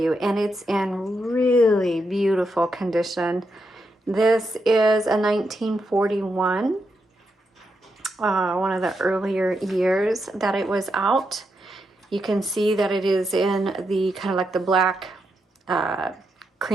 and it's in really beautiful condition. This is a 1941, one of the earlier years that it was out. You can see that it is in the kind of like the black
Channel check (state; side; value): normal; both; correlation 0.83